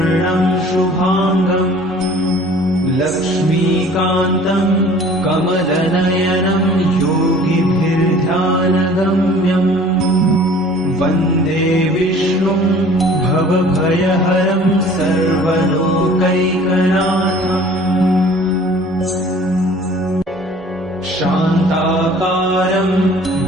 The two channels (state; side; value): normal; both; correlation 0.49